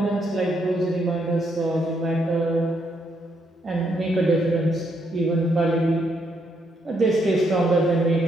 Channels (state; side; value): normal; both; correlation 0.76